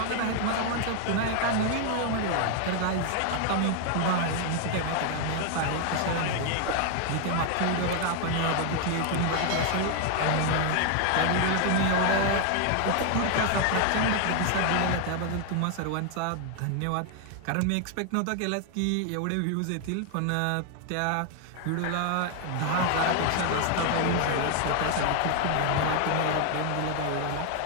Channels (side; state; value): both; different; correlation 0.00